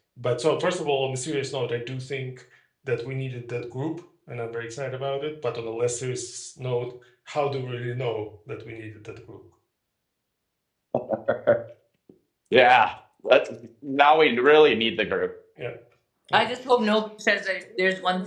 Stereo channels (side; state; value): both; identical; correlation 1.00